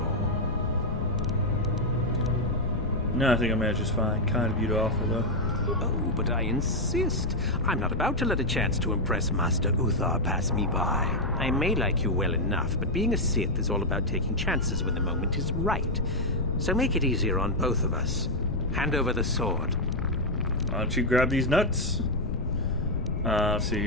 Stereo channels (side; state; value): left; noise; rumble, 3 dB below the sound